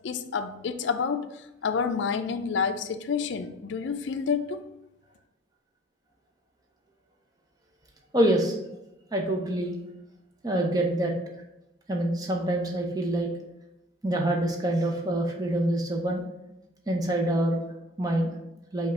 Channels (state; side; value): normal; both; correlation 0.48